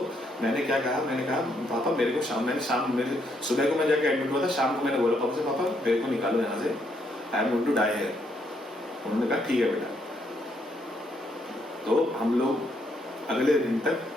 मैंने क्या कहा, मैंने कहा पापा मेरे को मेरे सुबह को मैं जाके एडमिट हुआ था, शाम को मैंने बोला पापा से, पापा मेरे को निकालो यहाँ से, I am going to die here. उन्होंने कहा ठीक है बेटा। तो हम लोग अगले दिन तक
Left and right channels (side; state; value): both; normal; correlation 0.74